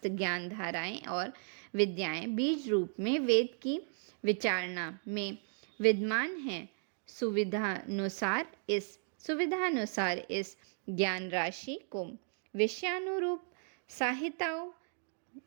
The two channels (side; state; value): left; silent; 54 dB below the other